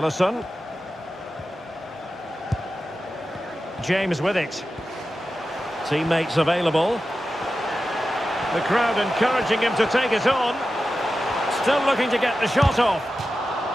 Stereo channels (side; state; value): both; normal; correlation 0.92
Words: James with it. Teammates available. The crowd encouraging him to take it on. Still looking to get the shot off.